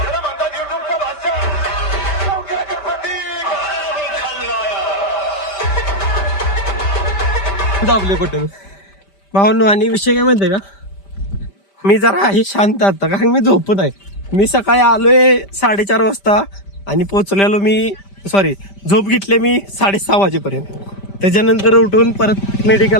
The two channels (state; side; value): late; right; 5.1 ms